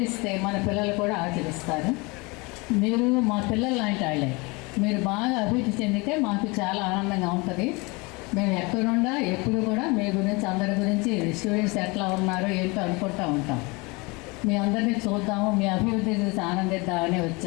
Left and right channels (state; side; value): quieter; right; 26.7 dB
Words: మన పిల్లలు కూడా ఆచరిస్తారు. మీరు మా పిల్లలు లాంటి వాళ్ళే. మీరు బాగా అభివృద్ధి చెందితే మాకు చాలా ఆనందంగా ఉంటుంది. మేము ఎక్కడుండా ఎప్పుడు కూడా మీ గురించి, అందరి గురించి, స్టూడెంట్స్ ఎట్లా ఉన్నారో ఏంటో అనుకుంటూ ఉంటాం. మీ అందరినీ చూద్దాము, మీ అభివృద్ధి చూసి ఆనందిద్దామని